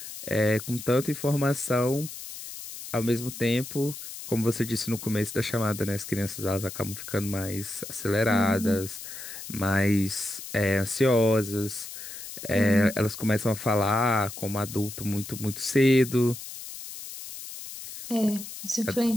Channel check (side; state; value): left; noise; hiss, 11 dB below the sound